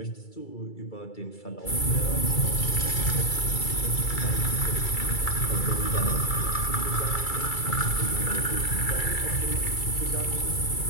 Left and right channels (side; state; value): right; late; 2.3 ms